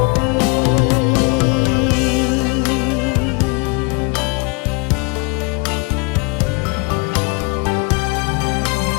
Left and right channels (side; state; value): right; quieter; 30.9 dB